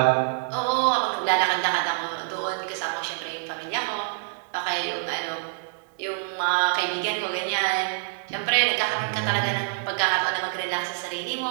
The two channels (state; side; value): silent; left; digital silence